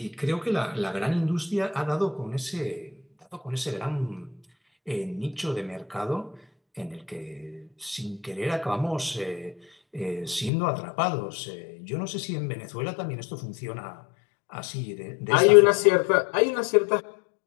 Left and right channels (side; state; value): right; drops out; at 10.5 s